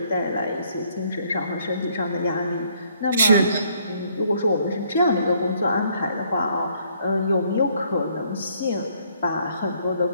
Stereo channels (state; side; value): inverted; both; correlation -0.66